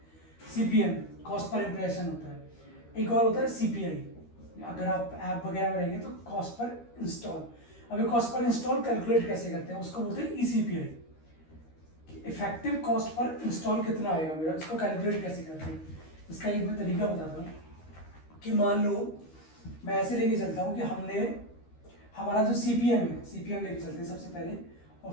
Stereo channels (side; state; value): right; late; 13 ms